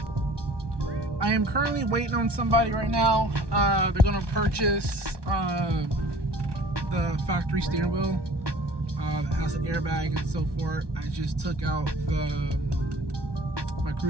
I am currently waiting on somebody right now. They're gonna purchase the factory steering wheel that has an airbag and so forth. I just took out my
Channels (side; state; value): left; late; 1.2 ms